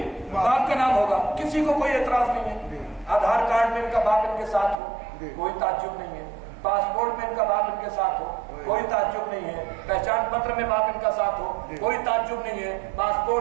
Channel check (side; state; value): left; drops out; at 4.8 s